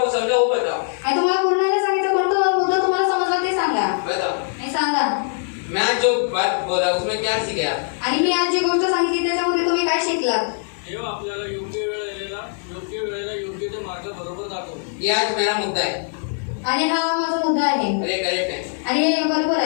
समझा वो बताओ. आणि तुम्हाला पूर्ण नाही सांगितलं कोणता मुद्दा तुम्हाला समजला ते सांगा. बताओ. नाही सांगा. मैं आज जो बात बोला उसमें क्या सीखे आप. आणि मी आज जी गोष्ट सांगितली त्याच्यामध्ये तुम्ही काय शिकलात. देव आपल्याला योग्य वेळेला योग्य ते मार्ग बरोबर दाखवतो. ये आज मेरा मुद्दा है. आणि हा माझा मुद्दा आहे. अरे करेक्ट है. आणि हे बरोबर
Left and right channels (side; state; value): right; silent; 65 dB below the other